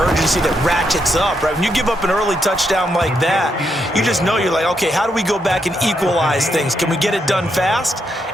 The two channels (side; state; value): both; normal; correlation 0.80